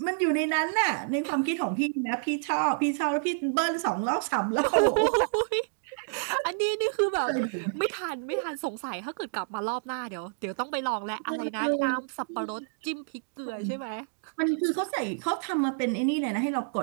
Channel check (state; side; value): silent; left; digital silence